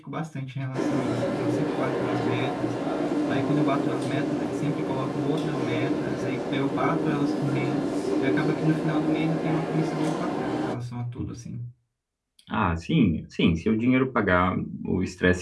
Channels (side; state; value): both; identical; correlation 1.00